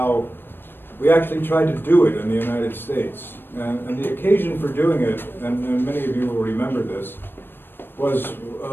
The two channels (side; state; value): right; late; 0.098 ms